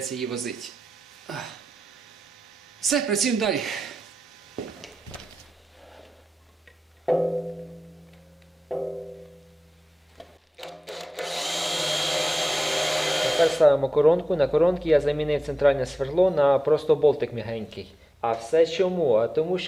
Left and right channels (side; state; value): both; normal; correlation 0.94